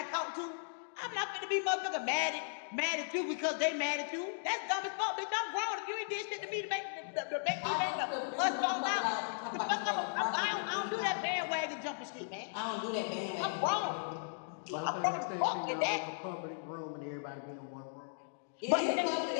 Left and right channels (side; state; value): right; silent; digital silence